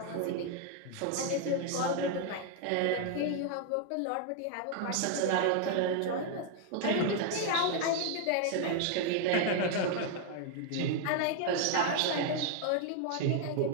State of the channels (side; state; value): both; different; correlation 0.00